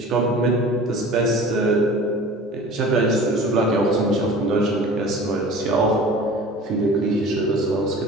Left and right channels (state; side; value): normal; both; correlation 0.41